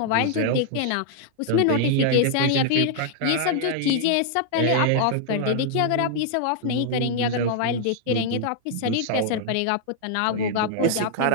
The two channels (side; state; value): both; different; correlation -0.01